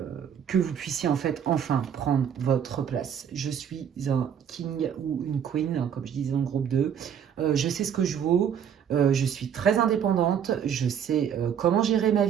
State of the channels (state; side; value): quieter; left; 8.5 dB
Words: vous puissiez en fait enfin prendre votre place. Je suis un king ou une queen, hein, comme je disais dans le groupe 2. Je sais ce que je vaux. Je suis très indépendante, je sais comment gérer ma